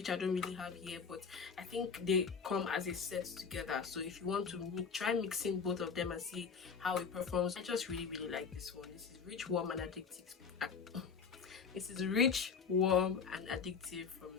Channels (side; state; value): right; quieter; 5.8 dB